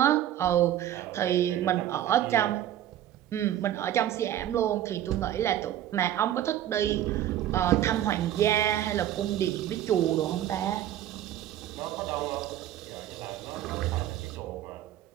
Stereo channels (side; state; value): left; quieter; 11.9 dB